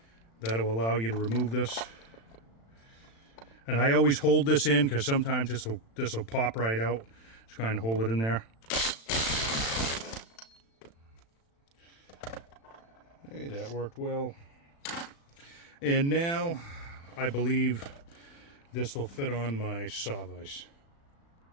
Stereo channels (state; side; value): late; right; 36 ms